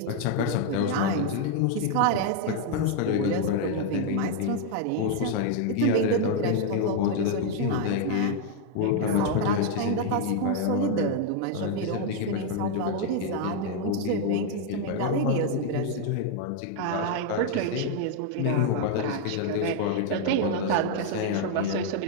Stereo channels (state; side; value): different; both; correlation 0.00